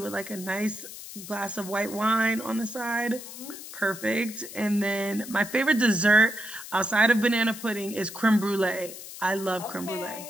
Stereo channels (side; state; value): left; noise; hiss, 12 dB below the sound